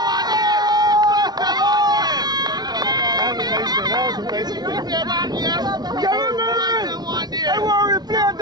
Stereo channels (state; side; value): late; left; 0.19 ms